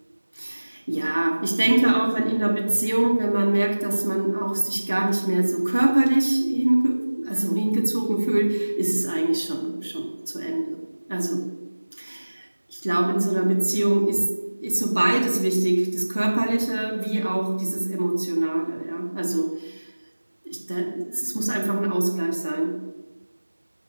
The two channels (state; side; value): inverted; both; correlation -1.00